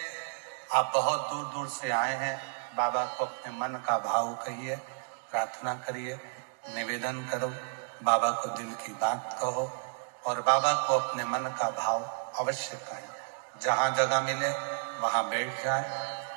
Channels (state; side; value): silent; left; digital silence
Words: आप बहुत दूर दूर से आए हैं, बाबा को अपने मन का भाव कहिए, प्रार्थना करिए, निवेदन करो, बाबा को दिल की बात कहो और बाबा को अपने मन का भाव अवश्य कहें। जहाँ जगह मिले वहाँ बैठ जाए,